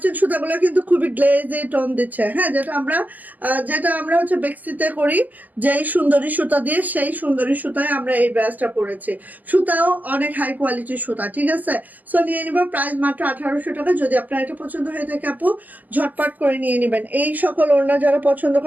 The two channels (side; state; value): left; late; 0.082 ms